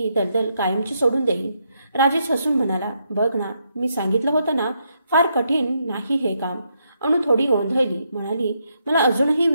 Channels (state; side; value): inverted; both; correlation -0.78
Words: दलदल कायमची सोडून देईन. राजेश हसून म्हणाला, बघ ना, मी सांगितलं होतं ना, फार कठीण नाही हे काम. अणू थोडी गोंधळली. म्हणाली, मला अजूनही